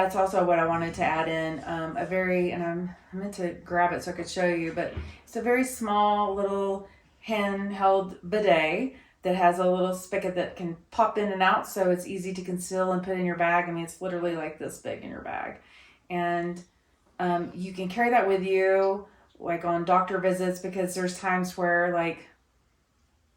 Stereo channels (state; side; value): identical; both; correlation 1.00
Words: also what I wanted to add in. And I meant to grab it so I could show you, but it's a very small little handheld bidet that has a little spigot that can pop in and out, so it's easy to conceal and put in your bag. I mean, it's literally like this big in your bag. And you can carry that with you, like on doctor visits, because there's times where, like,